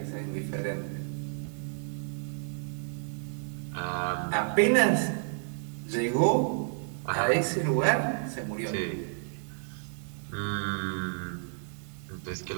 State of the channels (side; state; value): left; silent; 57 dB below the other